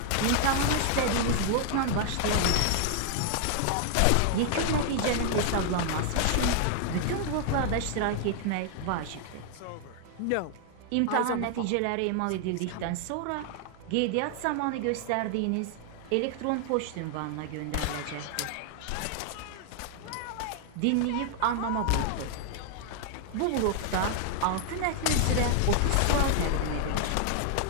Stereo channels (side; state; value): both; different; correlation 0.00